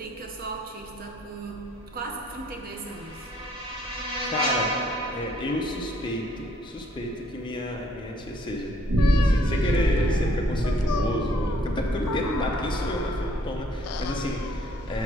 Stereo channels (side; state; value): both; normal; correlation 0.64